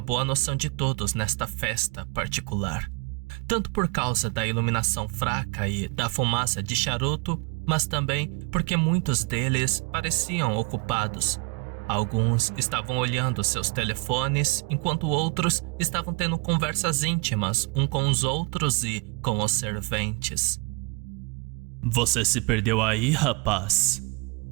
noção de todos nesta festa particular, tanto por causa da iluminação fraca e da fumaça de charuto, mas também porque muitos deles pareciam ocupados. Alguns estavam olhando seus telefones, enquanto outros estavam tendo conversas íntimas uns com os outros e com os serventes. Você se perdeu aí, rapaz?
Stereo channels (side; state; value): left; quieter; 27.9 dB